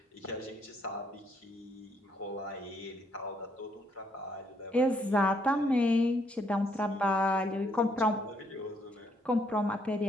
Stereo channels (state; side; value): normal; both; correlation 0.71